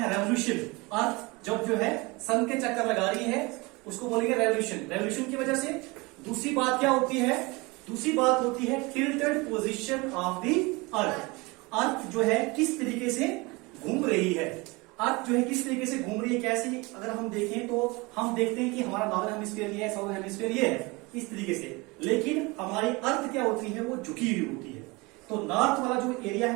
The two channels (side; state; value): left; quieter; 25.2 dB